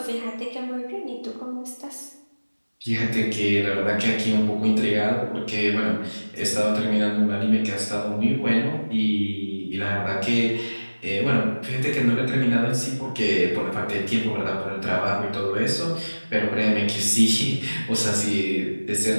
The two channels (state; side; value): inverted; both; correlation -1.00